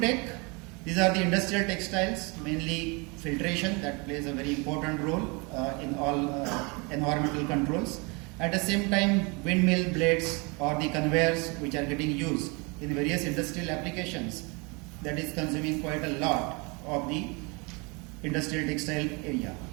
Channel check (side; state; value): left; quieter; 29.7 dB